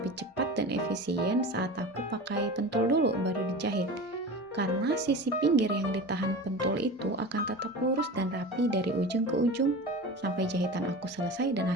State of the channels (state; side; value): normal; both; correlation 0.32